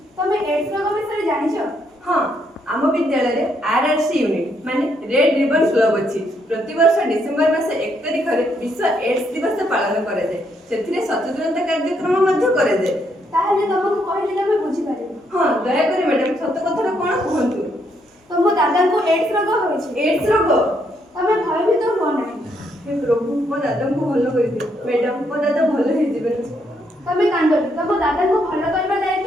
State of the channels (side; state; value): both; normal; correlation 0.74